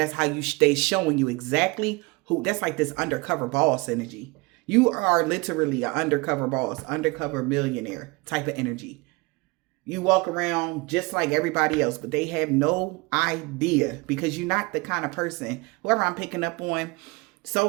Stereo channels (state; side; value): quieter; left; 25.6 dB